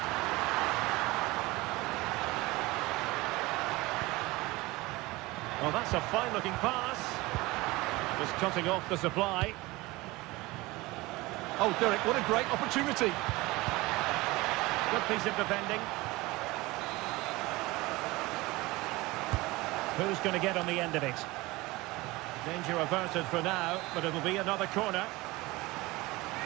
Well, that's a fine-looking pass. Just cutting off the supply. Oh, Derek, what a great opportunity. Good piece of defending. Who's going to get on the end of it? Danger averted for now, but it'll be another corner.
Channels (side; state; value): left; quieter; 21.3 dB